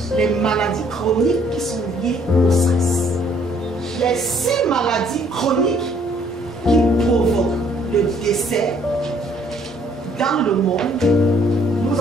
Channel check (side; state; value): both; normal; correlation 0.63